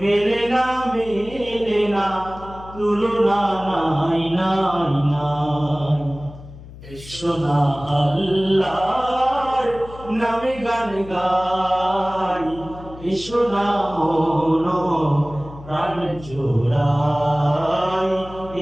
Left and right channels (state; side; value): noise; left; hum, 17 dB below the sound